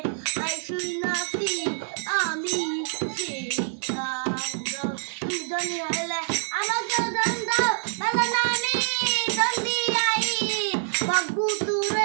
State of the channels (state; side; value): silent; left; 61 dB below the other